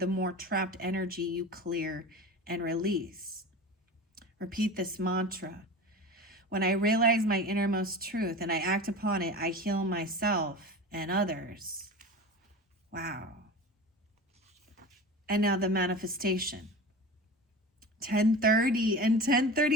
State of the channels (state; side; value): normal; both; correlation 0.32